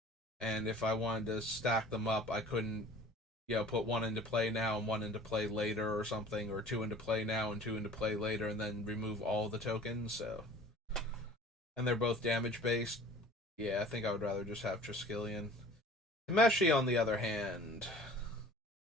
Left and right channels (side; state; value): both; normal; correlation 0.47